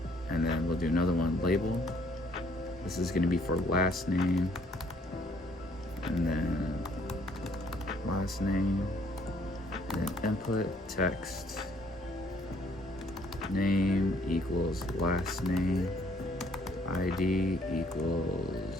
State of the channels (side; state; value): both; normal; correlation 0.64